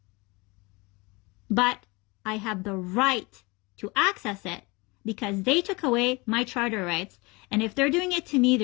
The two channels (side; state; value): right; quieter; 25.6 dB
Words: But I have the right to access it because they took away my charter rights. And if they're doing it to me,